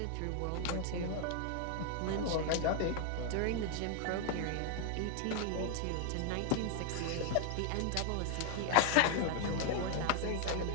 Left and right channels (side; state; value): both; different; correlation 0.00